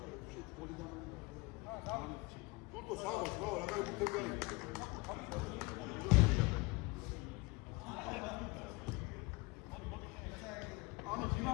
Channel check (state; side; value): quieter; right; 24.8 dB